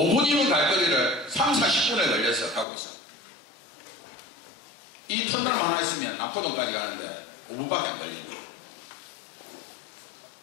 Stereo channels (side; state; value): right; drops out; at 2.7 s